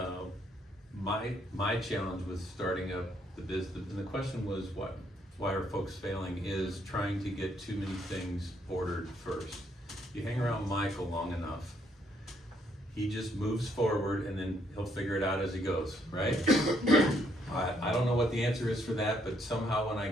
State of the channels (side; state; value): both; normal; correlation 0.71